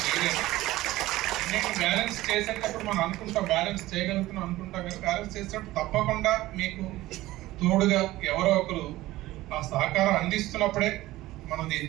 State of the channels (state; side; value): quieter; left; 17.1 dB